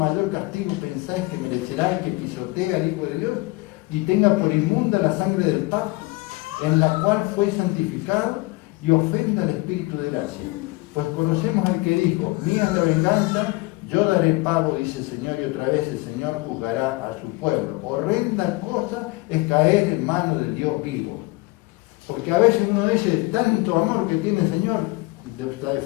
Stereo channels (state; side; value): quieter; right; 23.0 dB